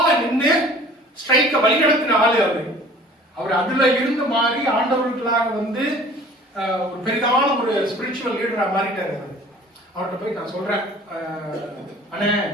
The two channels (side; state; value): both; normal; correlation 0.48